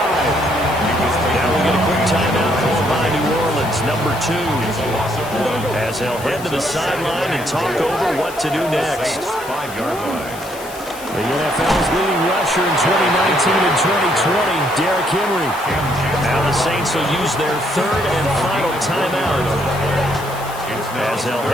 Now we get a quick timeout called by New Orleans, number 2. As they'll head to the sideline and talk over what to do next. 5-yard line. The NFL's leading rusher in 2019 and 2020, Derrick Henry. Now the Saints will use their 3rd and final timeout as they'll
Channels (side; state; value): left; noise; hiss, 16 dB below the sound